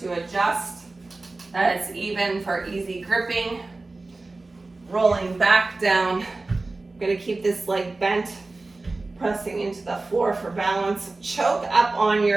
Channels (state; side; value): quieter; left; 3.3 dB